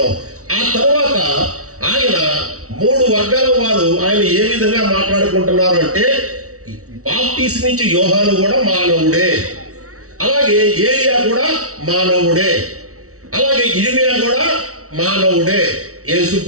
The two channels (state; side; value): late; left; 0.64 ms